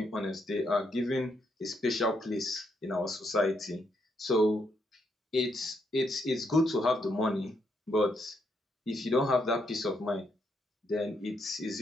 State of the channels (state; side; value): normal; both; correlation 0.77